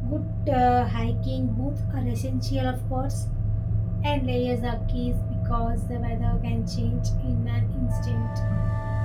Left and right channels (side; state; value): both; identical; correlation 1.00